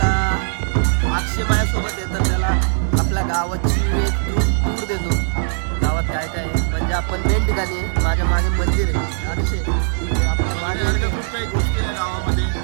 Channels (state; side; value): silent; left; digital silence